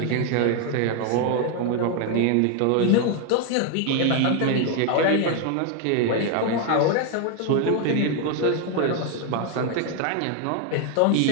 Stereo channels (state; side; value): different; both; correlation 0.01